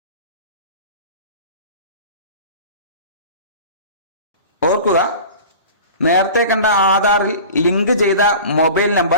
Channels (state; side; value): inverted; both; correlation -0.38